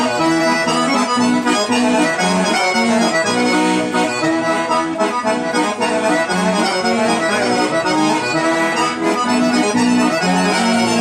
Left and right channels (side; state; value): both; identical; correlation 1.00